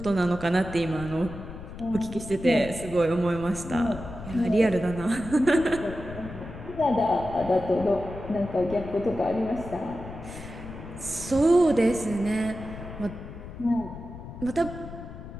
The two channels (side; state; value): left; noise; rumble, 12 dB below the sound